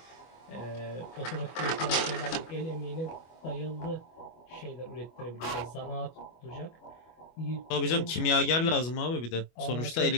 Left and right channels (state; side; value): late; right; 25 ms